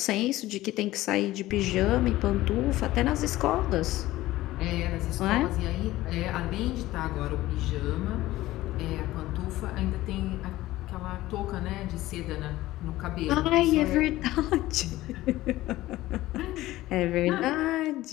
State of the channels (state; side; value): quieter; right; 16.6 dB